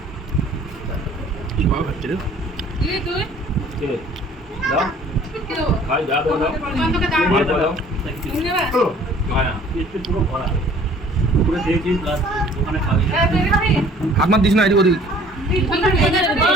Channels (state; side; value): normal; both; correlation 0.53